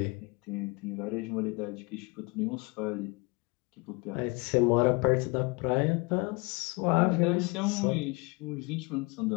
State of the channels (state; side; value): quieter; right; 27.5 dB